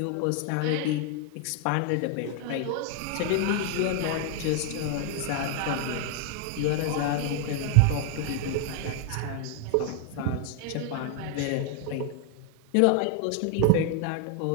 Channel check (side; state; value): both; different; correlation 0.00